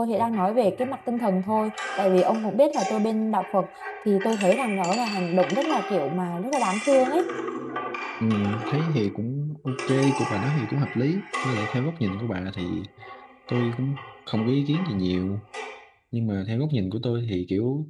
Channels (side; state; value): both; identical; correlation 1.00